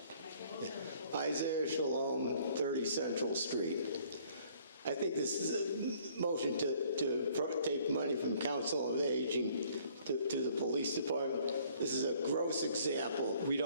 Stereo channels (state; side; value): inverted; both; correlation -0.59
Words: Isaiah Shalom, 30 Central Street. I think this is a motion to take money from Council on Aging to the police department. This is a gross example. We